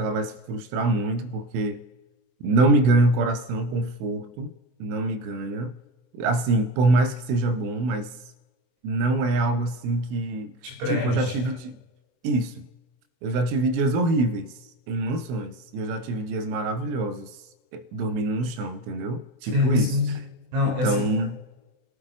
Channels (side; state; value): left; late; 24 ms